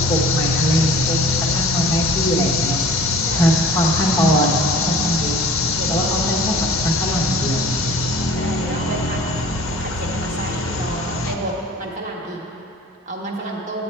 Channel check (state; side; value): normal; both; correlation 0.46